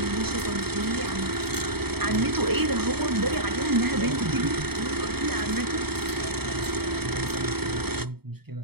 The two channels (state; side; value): late; left; 0.96 ms